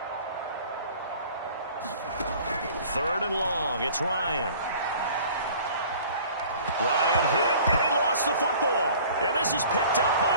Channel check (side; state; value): both; inverted; correlation -0.48